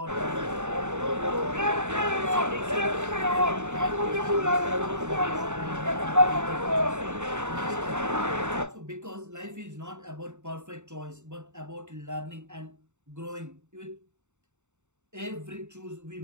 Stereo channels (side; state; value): left; late; 0.84 ms